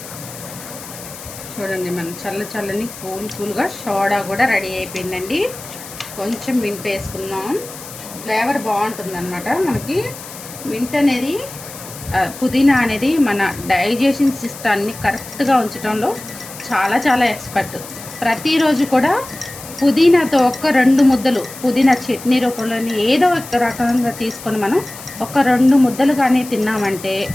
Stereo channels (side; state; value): left; noise; hiss, 14 dB below the sound